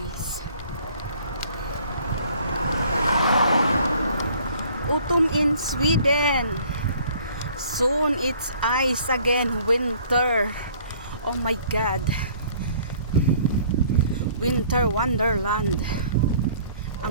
Autumn in Sweden. Soon it's ice again. Winter. Oh my God. Winter wonderland.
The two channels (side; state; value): both; inverted; correlation -0.55